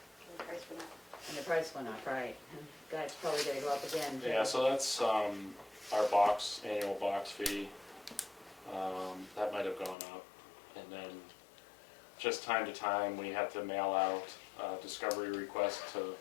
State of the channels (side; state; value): right; drops out; at 10.0 s